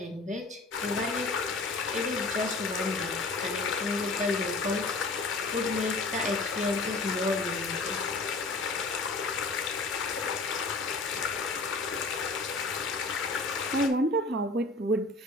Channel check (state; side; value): quieter; right; 3.3 dB